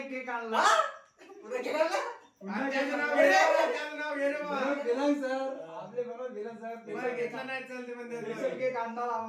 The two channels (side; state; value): both; identical; correlation 1.00